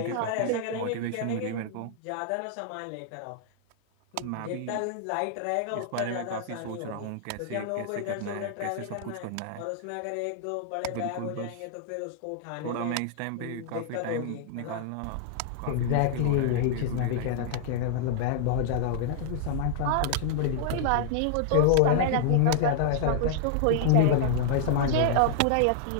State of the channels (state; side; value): different; both; correlation -0.01